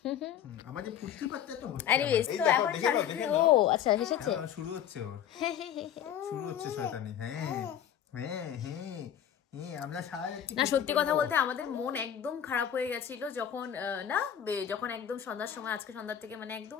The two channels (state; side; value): quieter; right; 9.6 dB